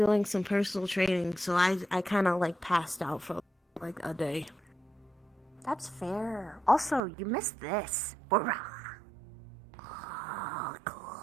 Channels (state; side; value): drops out; left; at 7.0 s